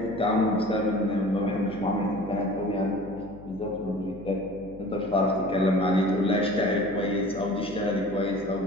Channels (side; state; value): left; noise; hum, 19 dB below the sound